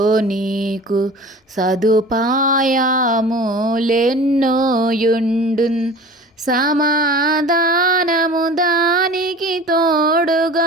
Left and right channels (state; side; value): normal; both; correlation 0.40